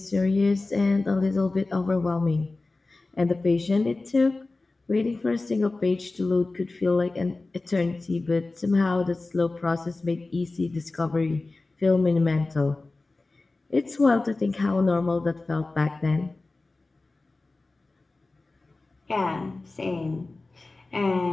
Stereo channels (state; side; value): quieter; right; 3.3 dB